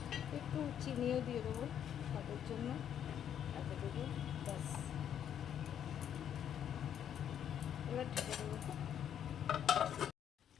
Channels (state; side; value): quieter; right; 9.4 dB